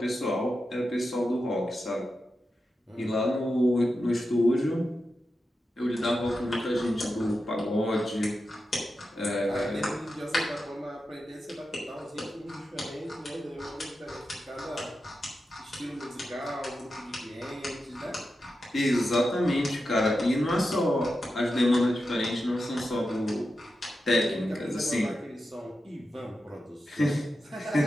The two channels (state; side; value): normal; both; correlation 0.90